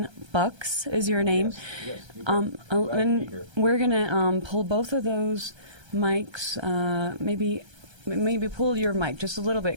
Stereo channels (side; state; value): left; late; 1.3 ms